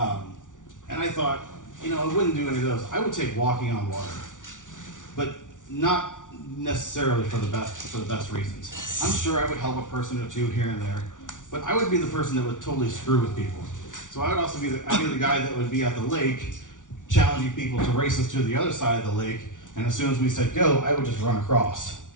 I thought, I wouldn't do any of those. I would take walking on water, but not necessarily for the best reasons. I'm sure I would help a person or two here and there, but I would be the person that would totally screw with people. So I would also be the guy that would be at the lake, challenging people to race us to the other side of the lake, and as soon as we said go, I would just run across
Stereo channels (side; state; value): right; late; 0.87 ms